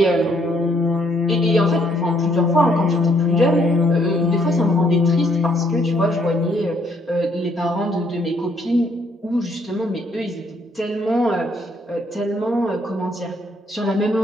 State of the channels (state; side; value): normal; both; correlation 0.69